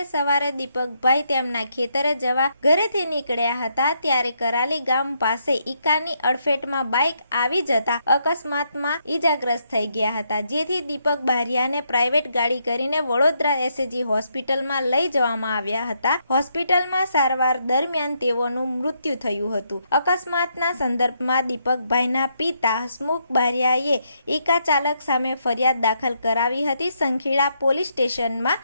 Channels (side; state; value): both; inverted; correlation -0.77